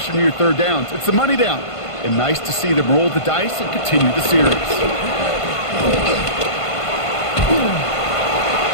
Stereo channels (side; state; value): right; late; 1.5 ms